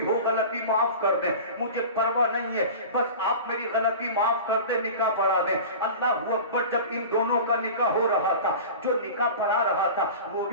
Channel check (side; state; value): both; inverted; correlation -0.34